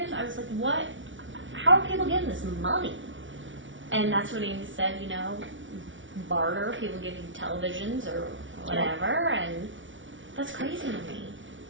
I was like, what? How are people getting this money? And that's when he said, barter, people give you televisions or whatever, and that's crazy to me.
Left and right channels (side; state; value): left; late; 0.56 ms